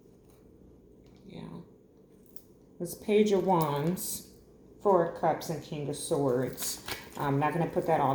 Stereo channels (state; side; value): identical; both; correlation 1.00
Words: Yeah. It's Page of Wands, 4 of Cups, and King of Swords. I'm not going to put that